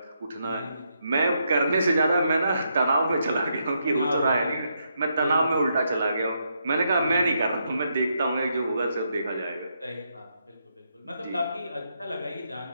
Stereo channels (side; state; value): both; inverted; correlation -0.79